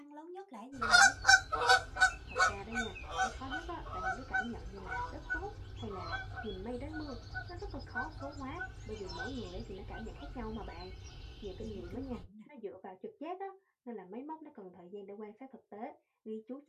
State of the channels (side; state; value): both; identical; correlation 1.00